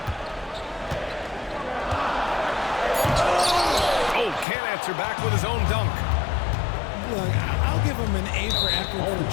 Oh, can't answer back with his own dunk. Look, I'll give him an A for effort for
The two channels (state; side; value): drops out; right; at 4.5 s